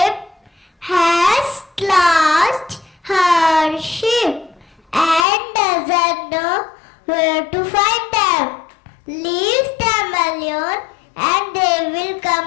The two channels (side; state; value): right; drops out; at 5.2 s